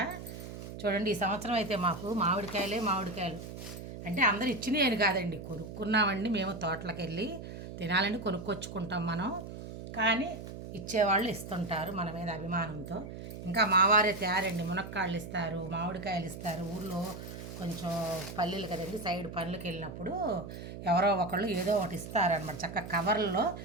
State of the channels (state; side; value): noise; right; hum, 10 dB below the sound